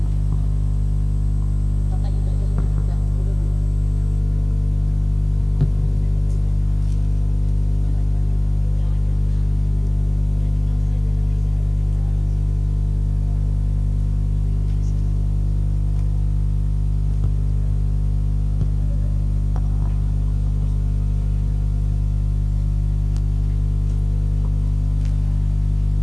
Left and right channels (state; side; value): noise; left; hum, 23 dB below the sound